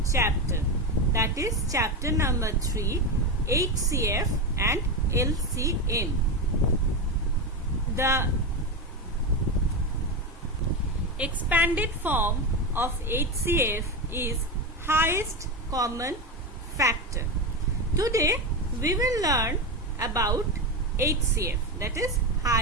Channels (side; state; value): both; normal; correlation 0.15